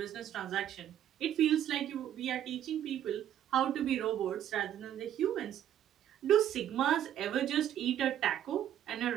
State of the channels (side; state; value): left; quieter; 10.8 dB